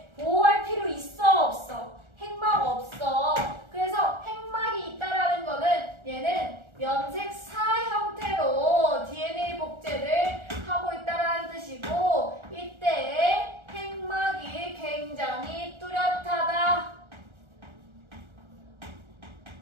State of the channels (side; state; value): left; late; 1.3 ms